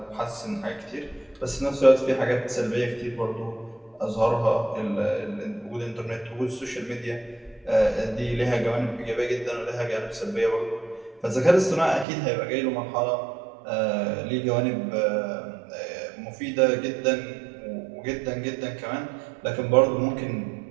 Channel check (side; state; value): left; drops out; at 12.1 s